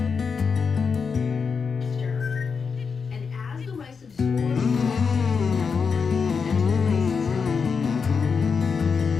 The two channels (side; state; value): right; quieter; 5.6 dB